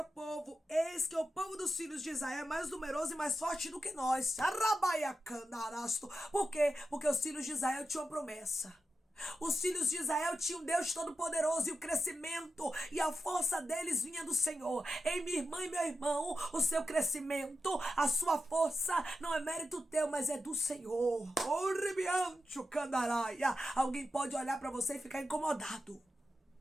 povo: Eis que o povo dos filhos de Israel é mais numeroso e mais forte do que nós. Por quê? Porque os filhos de Israel tinham uma promessa. Os filhos de Israel tinham um Deus Todo-Poderoso e o crescimento e a força deles vinha do Senhor. Ei, minha irmã e meu irmão, o seu crescimento, a sua força não é mérito teu, mas é do Senhor. Alguém pode olhar para você e ficar incomodado,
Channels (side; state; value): both; normal; correlation 0.90